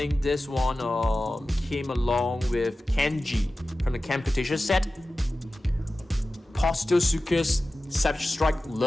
this one came along with Kenji from the Camputation set. Postosuchus, Savage Strike,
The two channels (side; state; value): both; normal; correlation 0.95